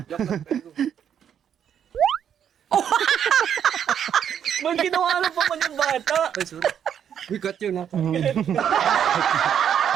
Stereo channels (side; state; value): left; quieter; 8.8 dB